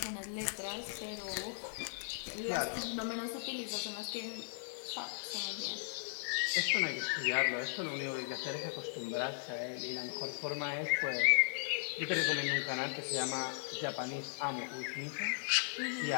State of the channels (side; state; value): right; silent; 53 dB below the other